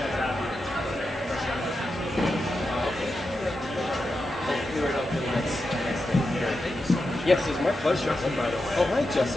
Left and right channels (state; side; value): normal; both; correlation 0.89